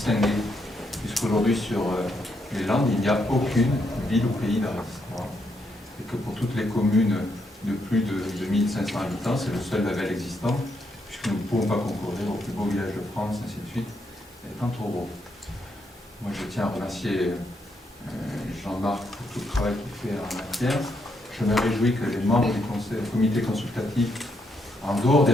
puisqu'aujourd'hui sur les Landes, il n'y a aucune ville ou pays d'art et d'histoire. Et que pour toutes les communes de plus de 2500 habitants, c'est le seul label existant, puisque nous ne pouvons pas concourir au plus beau village de France, ainsi de suite, étant trop gros. Moi, je tiens à remercier Jean-Marc pour tout le travail qu'il fait en matière. Je me réjouis que les membres du comité consultatif, en dehors des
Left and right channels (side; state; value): both; normal; correlation 0.78